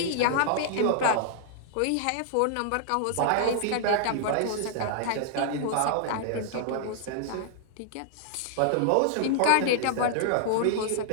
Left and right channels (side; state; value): both; different; correlation -0.01